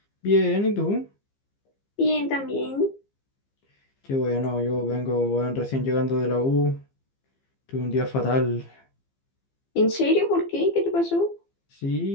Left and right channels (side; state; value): right; late; 15 ms